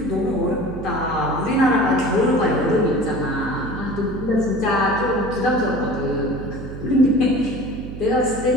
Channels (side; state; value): right; noise; hum, 11 dB below the sound